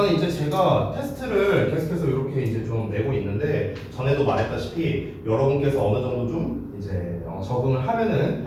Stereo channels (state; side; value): identical; both; correlation 1.00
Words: 이제 제가 테스트를 계속해서 이렇게 이제 좀 내고 있는데 전에도 말했다시피 여러분께서 어느 정도 좀 이제 적응을 하면은